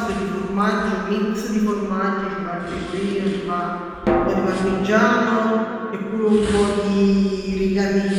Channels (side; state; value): both; identical; correlation 1.00